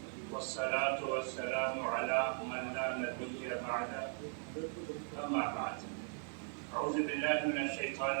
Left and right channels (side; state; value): left; silent; 52 dB below the other